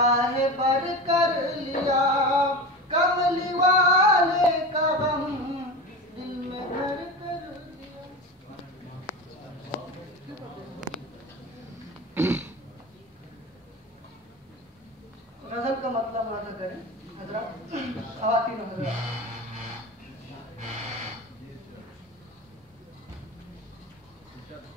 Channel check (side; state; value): both; normal; correlation 0.28